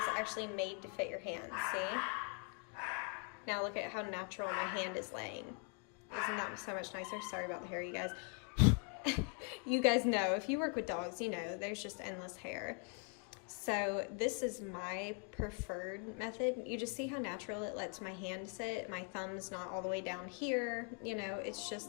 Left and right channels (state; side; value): quieter; right; 37.3 dB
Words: actually made to fit your hand, see? Now look at how natural my hand is laying. Isn't that so much nicer? Sorry about the hair, you guys. You guys know, if you work with dogs, you know, there's just endless hair. So this is my preferred method. You just see how natural it lets my hand sit. My thumb's not all the way down here. You know, it's